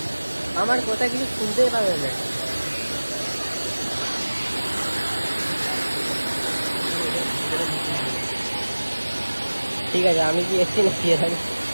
আমার কথা কিছু শুনতেই পাবে না। ঠিক আছে, আমি কি এসছি নাকি এখানে?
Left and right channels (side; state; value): both; inverted; correlation -1.00